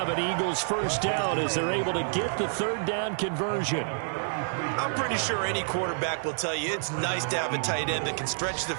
an Eagles first down as they're able to get the 3rd down conversion. I'm pretty sure any quarterback will tell you it's nice to have a tight end that can stretch the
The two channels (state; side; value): silent; left; digital silence